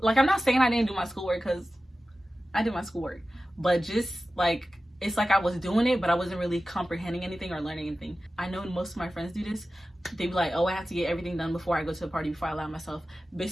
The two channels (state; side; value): normal; both; correlation 0.95